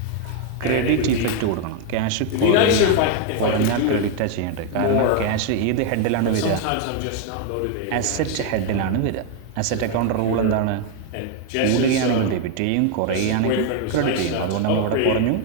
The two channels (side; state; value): both; different; correlation 0.01